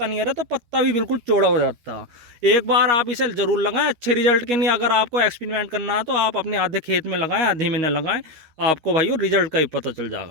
नहीं आ रहा, तो पत्ता भी बिल्कुल चौड़ा हो जाता। एक बार आप इसे ज़रूर लगाएं अच्छे रिजल्ट के लिए। अगर आपको एक्सपेरिमेंट करना है तो आप अपने आधे खेत में लगाएं, आधे में न लगाएं, आपको भाइयों रिजल्ट का ही पता चल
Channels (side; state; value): left; late; 13 ms